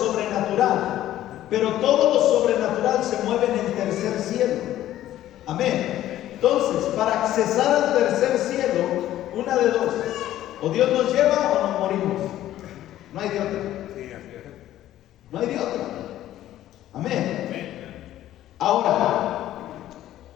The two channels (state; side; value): quieter; right; 13.3 dB